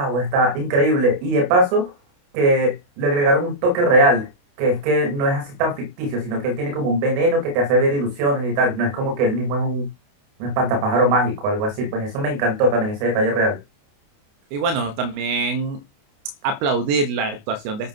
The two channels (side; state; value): left; late; 28 ms